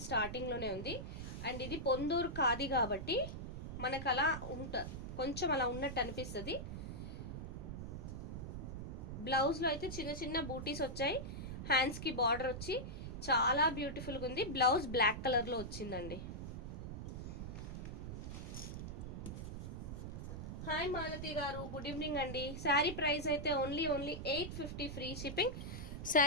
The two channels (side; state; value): right; noise; rumble, 6 dB below the sound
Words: స్టార్టింగ్లోనే ఉంది. అండ్ ఇది పొందూరు ఖాదీ కాబట్టి మనకు అలా కొంచెం అలా ఉన్నట్టు అనిపిస్తుంది. బ్లౌజ్లో అయితే చిన్న చిన్న బూటీస్ వచ్చాయి, హ్యాండ్స్కి బార్డర్ వచ్చి చాలా బ్యూటిఫుల్గా ఉంది. బ్లౌజ్ బ్లాక్ కలర్లో వచ్చిందండి. హాయ్ మాలతి గారు, గుడ్ ఈవినింగ్ అండి. శారీ ప్రైస్ అయితే ఓన్లీ 850 ఫ్రీ షిప్పింగ్.